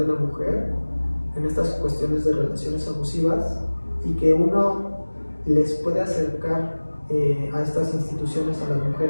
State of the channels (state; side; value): inverted; both; correlation -1.00